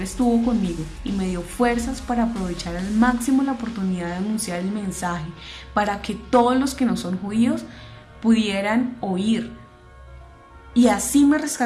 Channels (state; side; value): identical; both; correlation 1.00